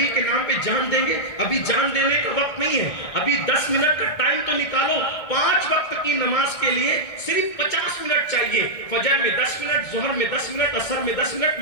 کے نام پہ جان دیں گے، ابھی جان دینے کا وقت نہیں ہے، ابھی 10 منٹ کا ٹائم تو نکالو، 5 وقت کی نماز کے لیے صرف 50 منٹ چاہیے، فجر میں 10 منٹ، ظہر میں 10 منٹ، عصر میں 10 منٹ،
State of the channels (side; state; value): right; late; 1.6 ms